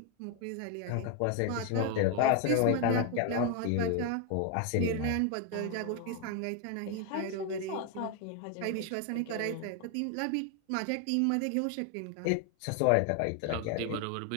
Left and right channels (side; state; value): both; different; correlation 0.01